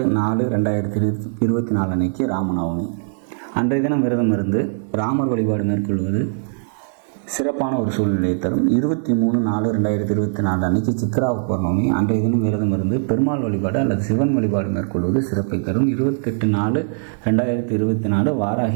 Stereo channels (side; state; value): left; silent; digital silence